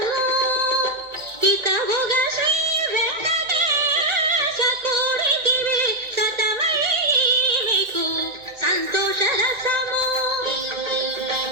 హితముగ శ్రీ వెంకటేశ కోరితివి సతమై మీకు సంతోష రసము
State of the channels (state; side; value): late; left; 1.9 ms